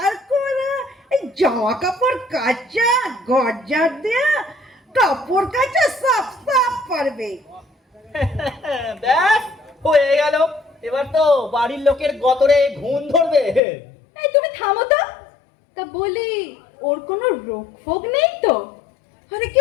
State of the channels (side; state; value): right; drops out; at 13.6 s